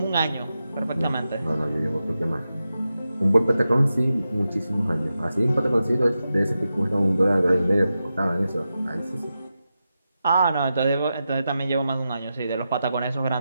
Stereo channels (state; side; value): inverted; both; correlation -0.90